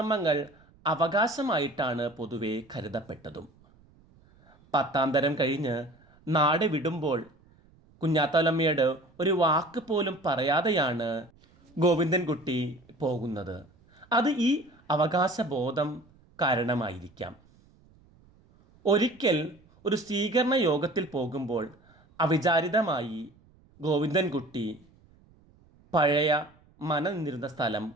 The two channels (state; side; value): noise; right; rumble, 29 dB below the sound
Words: അവകാശമായിട്ടാണ് പൊതുവെ കരുതപ്പെട്ടതും. 10ാം തരം കഴിഞ്ഞ് നാട് വിടുമ്പോൾ കുഞ്ഞാത്തോലമ്മയോട് ഒരു വാക്ക് പോലും പറയാതെയാണ് ഗോവിന്ദൻകുട്ടി പോകുന്നത്. അത് ഈ അവകാശബോധം കാരണമായിരിക്കാം. ഒരിക്കൽ ഒരു സ്വീകരണ യോഗത്തിൽ പോകുമ്പോൾ അവിചാരിതമായി ഗോവിന്ദൻകുട്ടി പഴയ മന നിന്നിരുന്ന സ്ഥലം